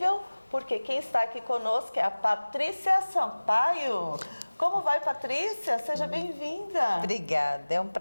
porque quem está aqui conosco é a Patrícia Sampaio. Como vai, Patrícia? Seja bem-vinda. Obrigada, é um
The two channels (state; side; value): inverted; both; correlation -1.00